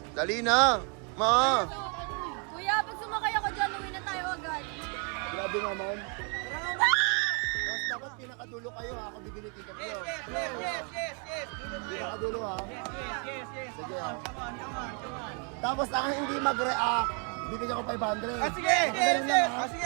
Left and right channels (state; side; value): quieter; left; 36.9 dB